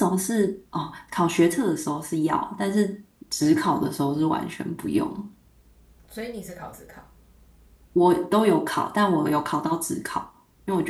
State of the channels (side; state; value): both; identical; correlation 1.00